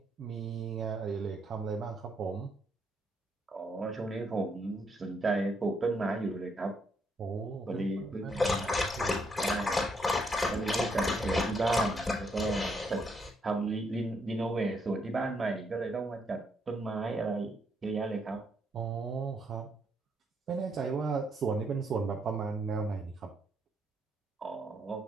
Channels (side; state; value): both; normal; correlation 0.74